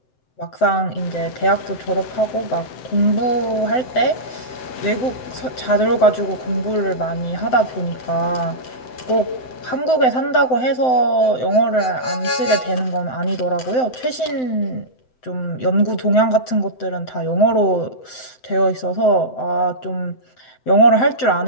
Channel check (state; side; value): late; right; 7.8 ms